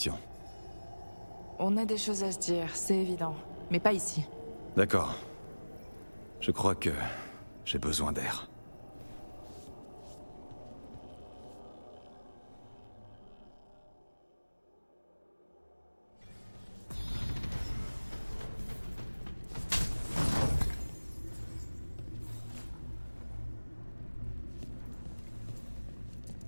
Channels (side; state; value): both; inverted; correlation -1.00